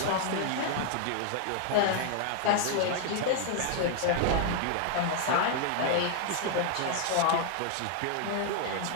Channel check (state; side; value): different; both; correlation 0.00